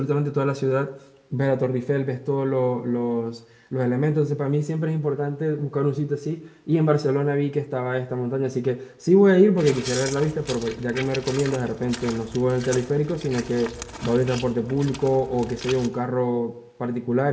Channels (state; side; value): identical; both; correlation 1.00